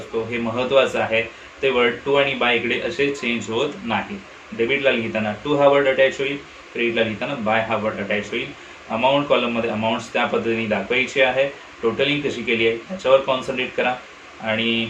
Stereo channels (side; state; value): both; identical; correlation 1.00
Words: हे महत्त्वाचं आहे, ते वर्ड टू आणि बाय इकडे असे चेंज होत नाही. डेबिटला लिहिताना टू हा वर्ड अटॅच होईल, क्रेडिटला लिहिताना बाय हा वर्ड अटॅच होईल. अमाऊंट कॉलममध्ये अमाऊंट्स त्या पद्धतीने दाखवायची आहे. टोटलिंग कशी केली आहे त्याच्यावर कॉन्सन्ट्रेट करा. आणि